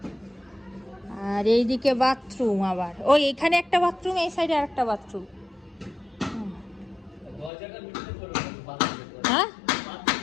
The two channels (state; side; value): drops out; right; at 7.5 s